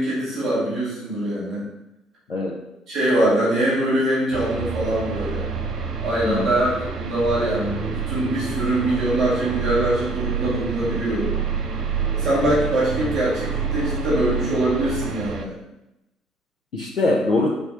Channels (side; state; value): both; normal; correlation 0.59